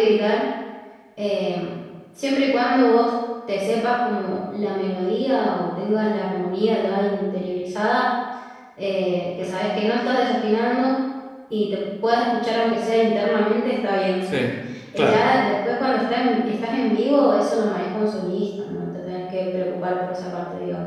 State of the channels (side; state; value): both; identical; correlation 1.00